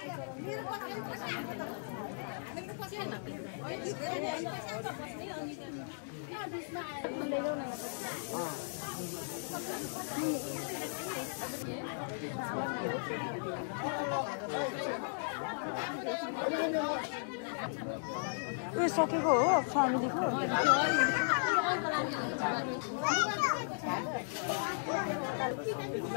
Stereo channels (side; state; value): right; silent; digital silence